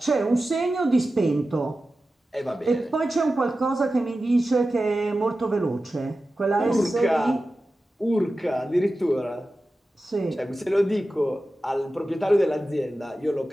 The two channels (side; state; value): both; normal; correlation 0.94